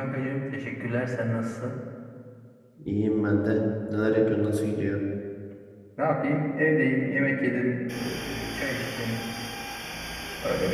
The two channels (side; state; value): both; identical; correlation 1.00